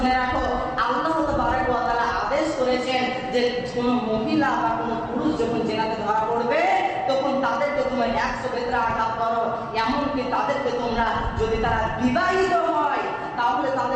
রাখো, আল্লাহ তাবারক ওয়া তাআলা আদেশ করেছেন যে কোন মহিলা বা কোন পুরুষ যখন জিনাতে ধরা পড়বে তখন তাদেরকে তোমরা 100 বেত্রা আঘাত করো, এমনকি তাদেরকে তোমরা যদি তারা বিবাহিত হয় তাহলে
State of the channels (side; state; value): both; identical; correlation 1.00